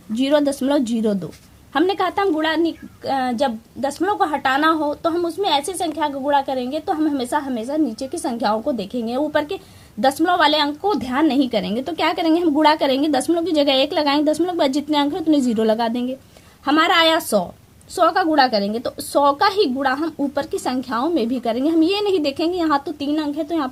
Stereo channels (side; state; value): both; identical; correlation 1.00